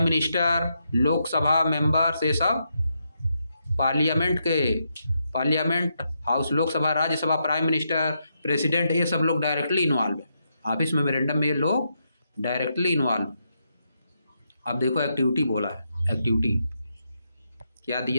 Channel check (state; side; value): inverted; both; correlation -0.81